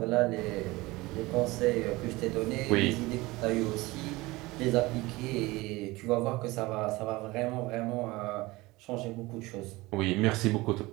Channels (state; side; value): quieter; left; 21.1 dB